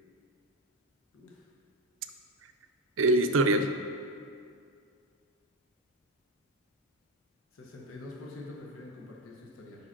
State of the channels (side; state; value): both; normal; correlation 0.12